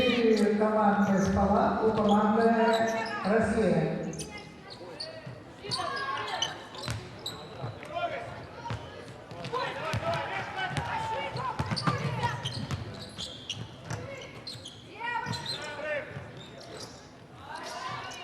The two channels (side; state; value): both; identical; correlation 1.00